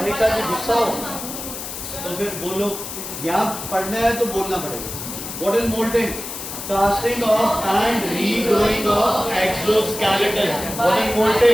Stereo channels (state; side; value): noise; left; hiss, 8 dB below the sound